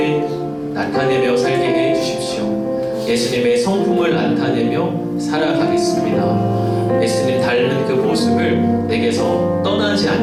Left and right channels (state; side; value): identical; both; correlation 1.00